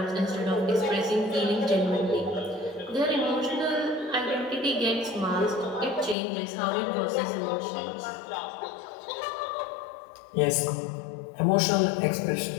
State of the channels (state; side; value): drops out; right; at 6.2 s